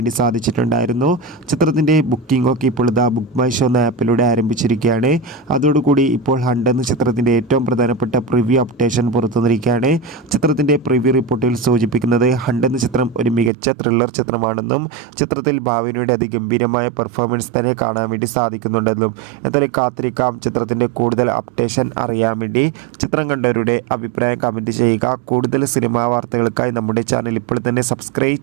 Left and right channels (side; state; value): left; drops out; at 13.5 s